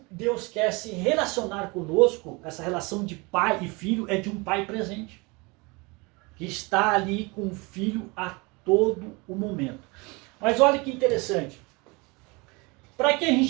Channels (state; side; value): quieter; left; 27.0 dB